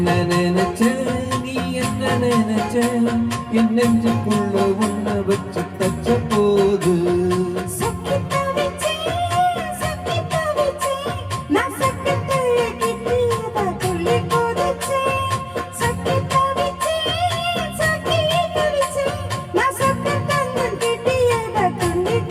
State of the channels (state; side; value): identical; both; correlation 1.00